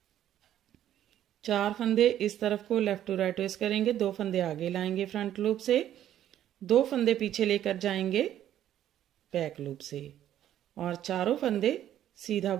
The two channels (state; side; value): quieter; left; 11.5 dB